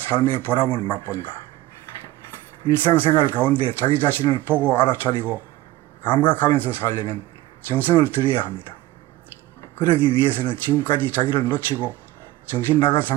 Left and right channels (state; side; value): quieter; left; 16.5 dB